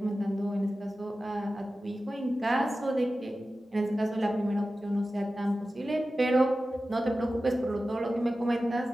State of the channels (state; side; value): normal; both; correlation 0.94